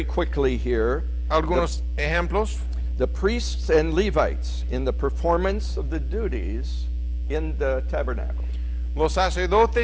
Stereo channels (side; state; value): both; identical; correlation 1.00